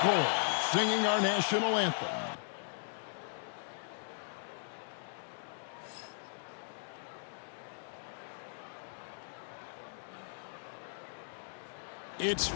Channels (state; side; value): silent; right; digital silence